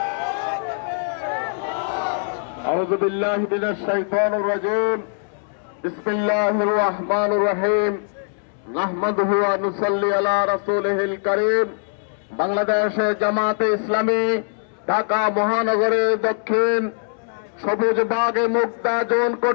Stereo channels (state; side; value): silent; right; digital silence